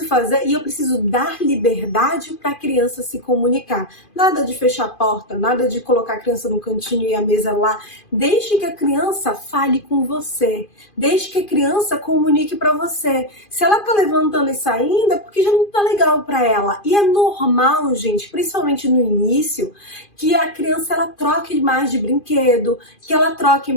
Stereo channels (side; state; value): right; late; 2.5 ms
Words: fazer e eu preciso dar liberdade para a criança se comunicar. Nada de fechar a porta, nada de colocar a criança no cantinho e a mesa lá. Deixe que a criança fale com você. Deixe que a criança comunique para você. Se ela tá levantando e saindo, é porque já não tá legal para ela. E é normal, gente, principalmente no início, que a criança ela troque mais de brinquedo, que ela troque